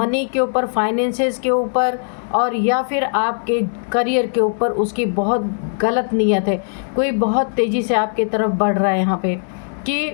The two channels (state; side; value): silent; right; digital silence